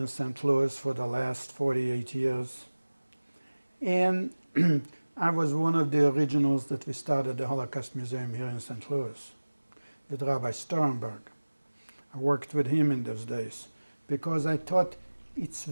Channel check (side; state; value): both; inverted; correlation -1.00